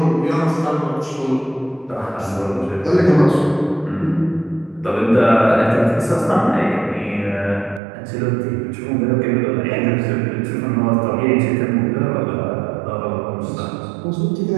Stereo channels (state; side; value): drops out; left; at 7.8 s